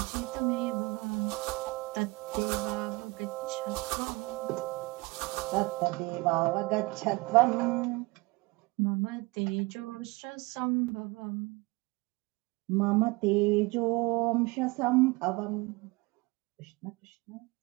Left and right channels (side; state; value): left; quieter; 24.4 dB